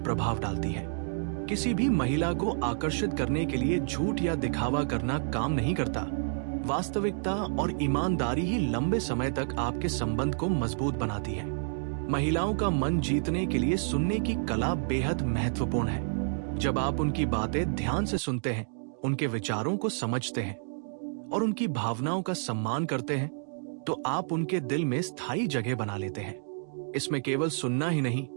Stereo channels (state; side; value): silent; left; digital silence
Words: प्रभाव डालती है। किसी भी महिला को आकर्षित करने के लिए झूठ या दिखावा करना काम नहीं करता। वास्तविकता और ईमानदारी ही लंबे समय तक आपके संबंध को मजबूत बनाती है। महिलाओं का मन जीतने के लिए सुनने की कला बेहद महत्वपूर्ण है। जब आप उनकी बातें ध्यान से सुनते हैं, उनके विचारों को समझते हैं और उनकी भावनाओं का सम्मान करते हैं, तो आप उनके दिल में स्थायी जगह बना लेते हैं। इसमें केवल सुनना ही नहीं,